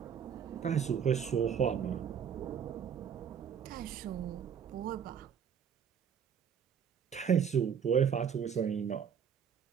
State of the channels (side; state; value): left; quieter; 7.8 dB